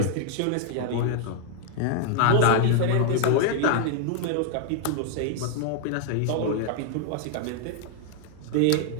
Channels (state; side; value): different; both; correlation 0.00